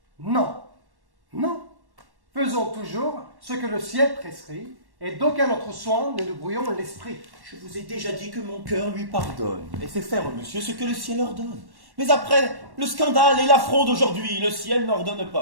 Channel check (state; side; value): late; left; 1.1 ms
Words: Non, non. Faisons toujours ce que le ciel prescrit, et d'aucun autre soin ne nous brouillons l'esprit. Je vous ai déjà dit que mon cœur lui pardonne, et fait faire, monsieur, ce que le ciel ordonne. Mais après le scandale et l'affront d'aujourd'hui, le ciel n'ordonne